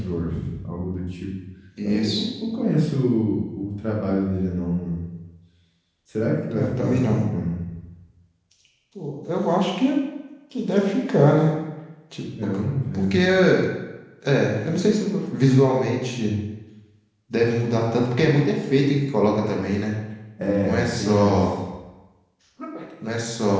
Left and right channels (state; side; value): identical; both; correlation 1.00